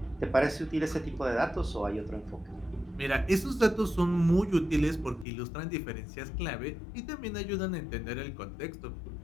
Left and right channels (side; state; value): right; drops out; at 5.2 s